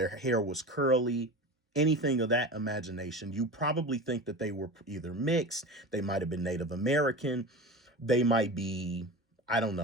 hair was curly, anything of that imagination, you probably think that they were either mixed, they might have been Native American, they might be, I don't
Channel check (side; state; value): both; normal; correlation 0.30